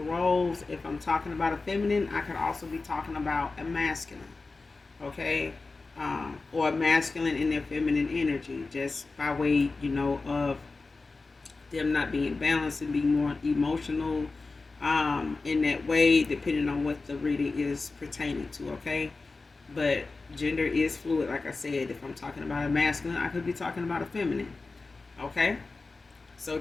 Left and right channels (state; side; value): quieter; right; 3.8 dB